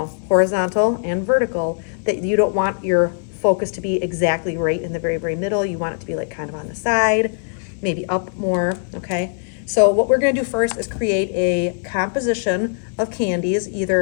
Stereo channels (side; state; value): right; silent; 62 dB below the other